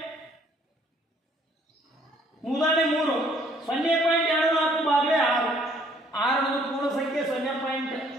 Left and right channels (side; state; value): both; normal; correlation 0.62